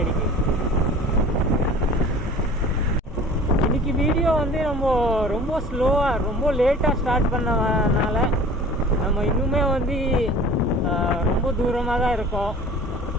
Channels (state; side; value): normal; both; correlation 0.44